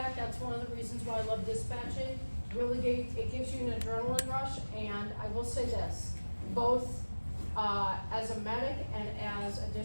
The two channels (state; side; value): inverted; both; correlation -1.00